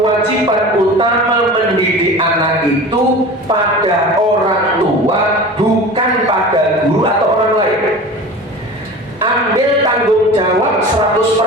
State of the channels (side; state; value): both; normal; correlation 0.35